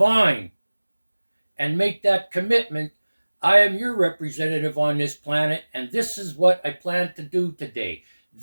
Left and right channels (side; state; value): both; inverted; correlation -1.00